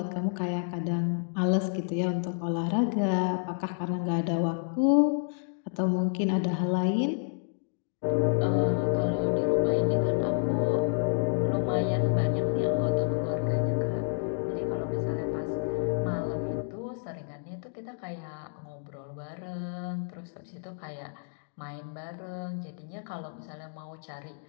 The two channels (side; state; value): right; silent; digital silence